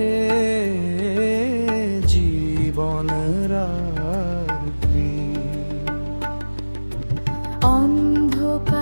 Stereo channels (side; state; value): both; inverted; correlation -1.00